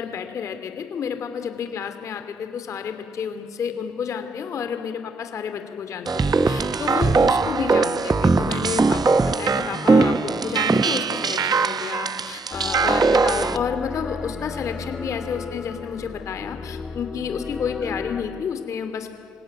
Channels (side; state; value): both; normal; correlation 0.71